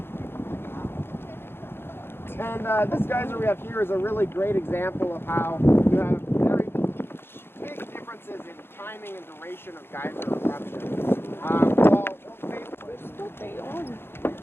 And this geyser we have here is a really great example of how you have very big differences in timing and duration of geyser eruptions.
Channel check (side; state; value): right; late; 0.11 ms